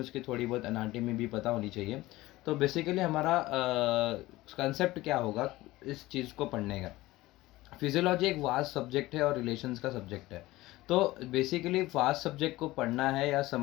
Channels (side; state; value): right; quieter; 18.2 dB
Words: उसकी थोड़ी बहुत एनाटॉमी भी पता होनी चाहिए। तो बेसिकली हमारा कंसेप्ट क्या होगा इस चीज़ को पढ़ने का। फिजियोलॉजी एक वास्ट सब्जेक्ट है और रिलेशंस का सब्जेक्ट है। तो बेसिकली वास्ट सब्जेक्ट को पढ़ना है या